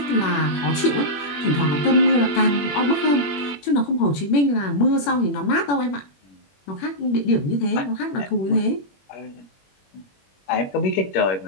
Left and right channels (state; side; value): late; right; 21 ms